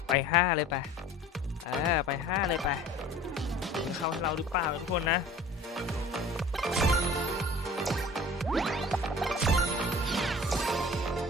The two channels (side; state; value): both; normal; correlation 0.45